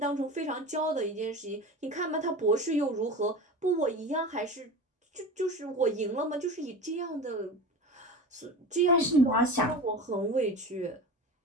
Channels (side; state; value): both; normal; correlation 0.31